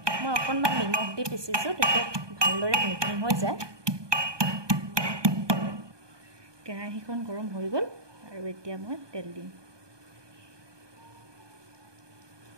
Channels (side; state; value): left; late; 1.2 ms